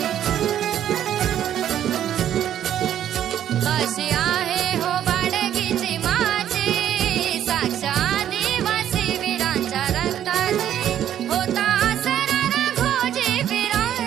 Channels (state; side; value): quieter; left; 10.7 dB